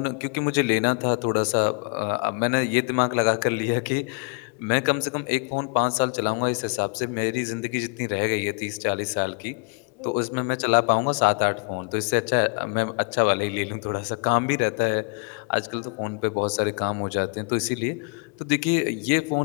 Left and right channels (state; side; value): quieter; right; 34.1 dB